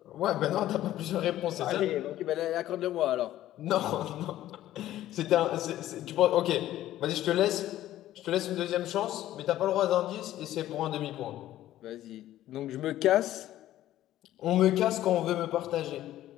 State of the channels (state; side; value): quieter; right; 13.7 dB